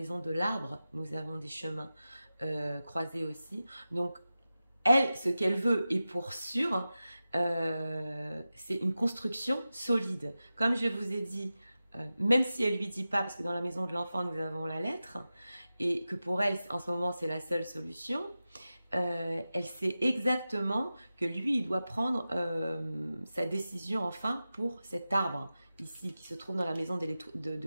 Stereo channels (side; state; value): both; inverted; correlation -0.94